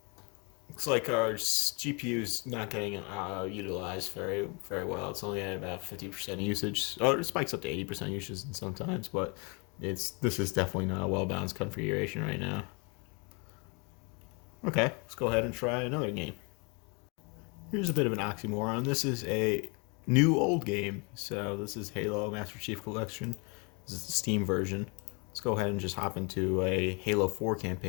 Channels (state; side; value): quieter; right; 32.1 dB